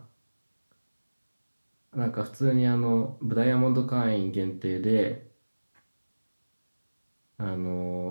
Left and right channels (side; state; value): both; inverted; correlation -1.00